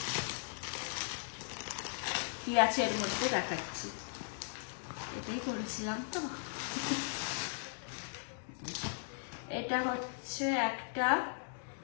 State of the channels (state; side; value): silent; right; digital silence